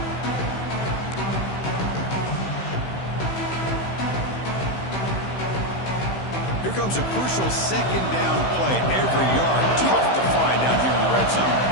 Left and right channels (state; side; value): late; right; 15 ms